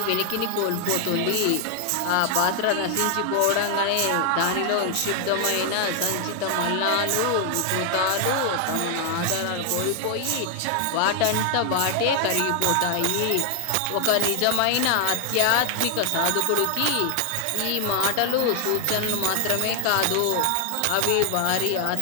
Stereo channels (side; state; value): both; different; correlation 0.00